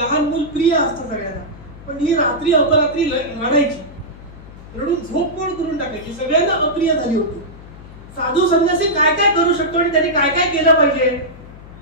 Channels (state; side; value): noise; left; hum, 18 dB below the sound